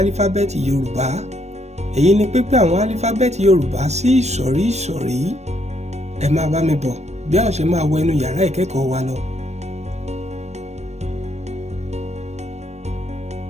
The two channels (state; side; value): late; left; 0.32 ms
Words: Yorùbá. Èyí ni pípín àwọn álífábẹ́ẹ̀tì Yorùbá sí ìsọ̀rí ìsọ̀rí. Ẹ máa bá mi bọ̀ bí a ó ṣe máa wọ inú yàrá ìkẹ́kọ̀ọ́ wa lọ.